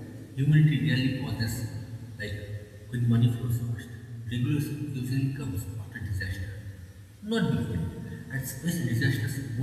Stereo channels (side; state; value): both; identical; correlation 1.00